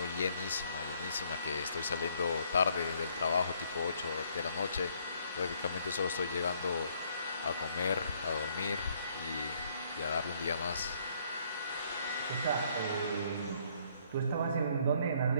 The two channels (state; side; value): inverted; both; correlation -0.66